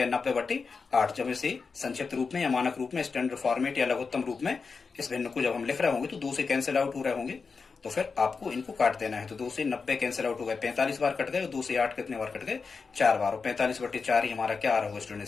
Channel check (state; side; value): quieter; right; 4.9 dB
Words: 90/8। जब इसे संक्षिप्त रूप में या मानक रूप में, स्टैंडर्ड फॉर्मेट या लघुत्तम रूप में इस भिन्न को जब हम लिख रहे होंगे तो 2 से कैंसिल आउट हो रहे होंगे, तो फिर आपको इनको काट देना है। तो 2 से 90 कैंसिल आउट हो गए, 45 बार कट गए, और 2 से 8 कितने बार कट गए, 4 बार, और 45/4 ही हमारा क्या आ रहा होगा स्टूडेंट,